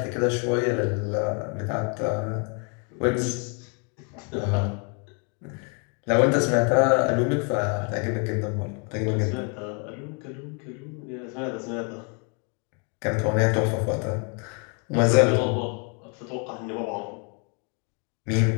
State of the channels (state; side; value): quieter; right; 37.1 dB